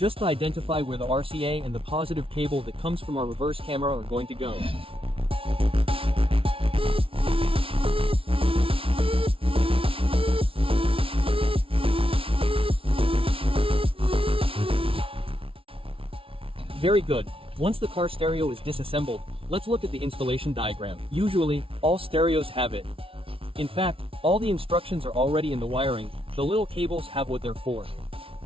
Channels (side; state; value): left; late; 0.26 ms